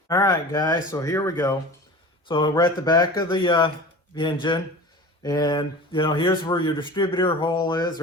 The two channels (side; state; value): both; normal; correlation 0.37